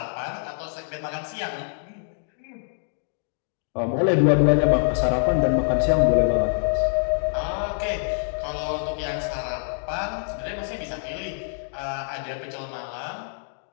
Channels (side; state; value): right; silent; digital silence